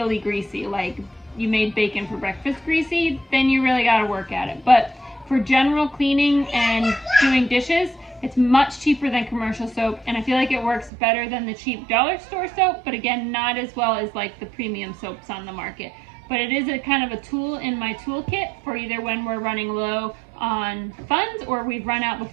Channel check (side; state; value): left; drops out; at 10.9 s